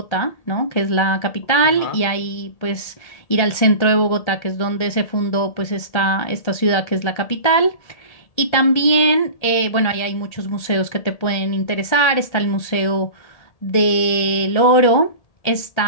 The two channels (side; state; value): right; late; 1.8 ms